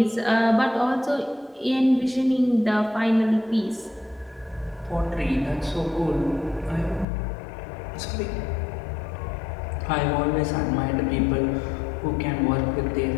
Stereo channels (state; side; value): drops out; right; at 7.1 s